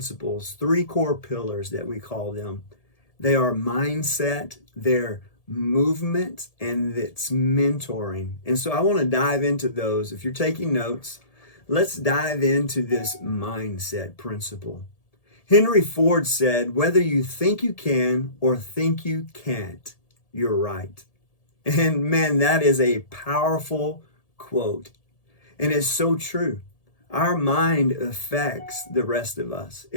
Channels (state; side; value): late; right; 1.7 ms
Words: three core pillars that we call them. They are mindset, they're movement, and it's mentoring. And so I want to dive into those. If you're taking notes, let's dive into this mindset principle. Henry Ford said, whether you think you can or think you can't, you're right. And man, that is a powerful quote. And it's so true. Our mind affects the rest of us.